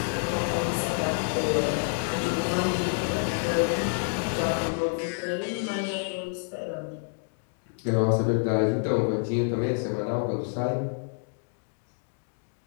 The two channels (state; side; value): silent; right; digital silence